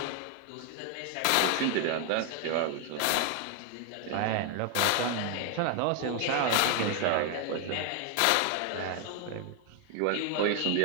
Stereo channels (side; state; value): both; different; correlation 0.01